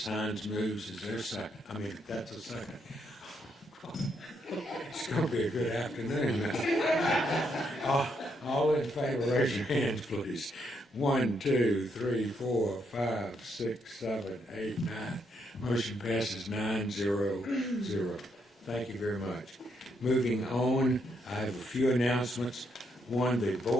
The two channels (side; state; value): both; normal; correlation 0.76